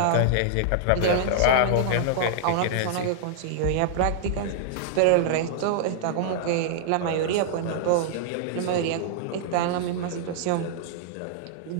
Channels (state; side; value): different; both; correlation -0.01